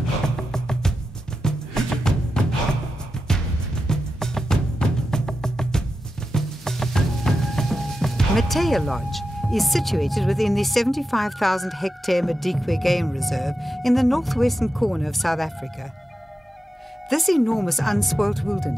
Mateya Lodge is situated within the 75,000-hectare Madikwe Game Reserve in the northwestern corner of South Africa. This enormous unspoilt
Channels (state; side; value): normal; both; correlation 0.89